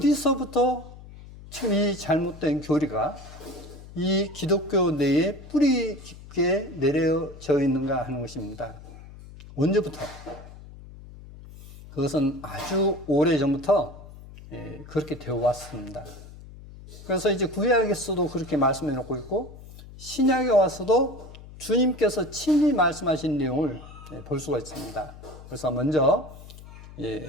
지금 이 잘못된 교리가 이 기독교 내에 뿌리 깊게 내려져 있는가 하는 것입니다. 언제부터? 그것은 아주 오래전부터 그렇게 되어 왔습니다. 그래서 이제 구약에서도 그렇게 말씀해 놓고 있고 신약에 와서도 주님께서 친히 말씀하신 내용을 볼 수가 있습니다. 그래서 먼저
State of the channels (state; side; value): noise; left; hum, 17 dB below the sound